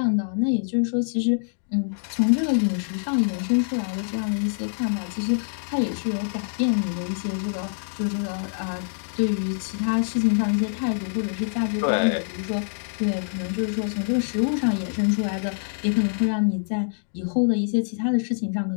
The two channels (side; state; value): right; silent; digital silence